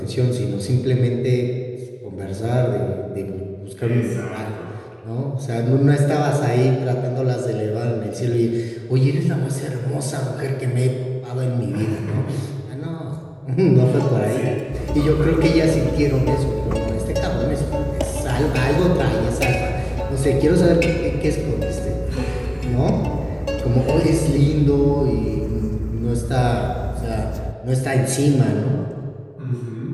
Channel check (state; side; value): identical; both; correlation 1.00